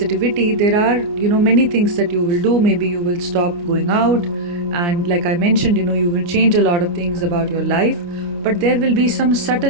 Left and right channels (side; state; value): left; late; 29 ms